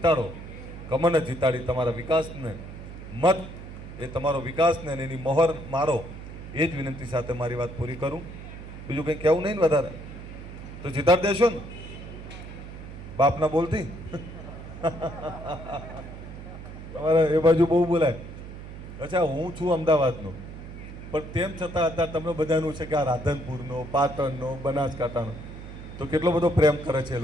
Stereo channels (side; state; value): right; noise; hum, 12 dB below the sound